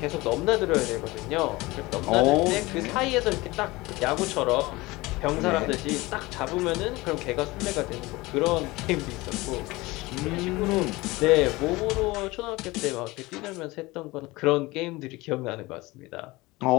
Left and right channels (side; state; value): right; quieter; 21.4 dB